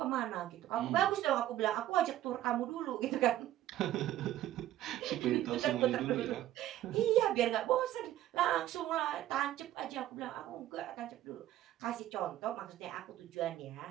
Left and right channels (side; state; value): left; quieter; 13.6 dB